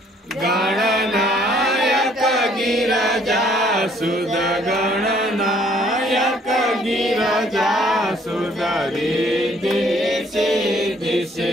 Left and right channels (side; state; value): both; normal; correlation 0.62